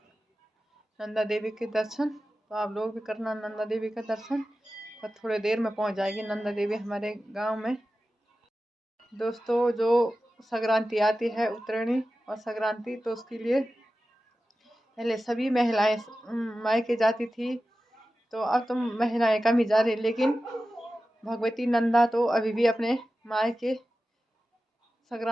नंदा देवी के दर्शन। तो आप लोग भी करना नंदा देवी का दर्शन। तो थोड़ी देर में पहुंच जाएगी नंदा देवी हमारे गांव में। दोस्तों, जो संक्रांति आती है उत्तरायणी और संक्रांति, तो उसके लिए पहले सभी महिलाएं मायके जाती थी। तो अब तो महिलाएं कम ही जा रही, लेकिन भगवती नंदा तो अभी भी अपने मायके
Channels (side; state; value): both; normal; correlation 0.94